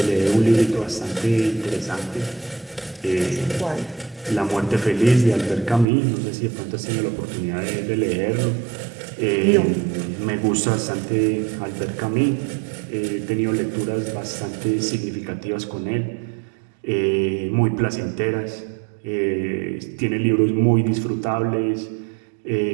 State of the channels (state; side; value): drops out; left; at 5.9 s